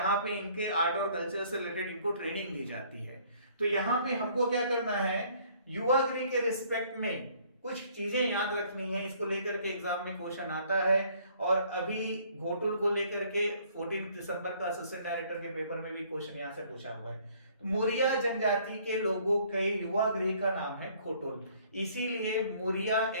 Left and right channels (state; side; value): inverted; both; correlation -0.60